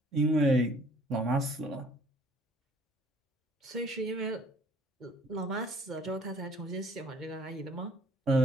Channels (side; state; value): both; normal; correlation 0.56